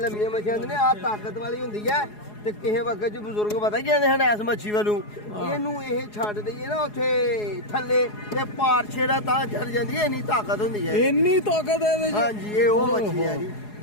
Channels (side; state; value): right; late; 4.8 ms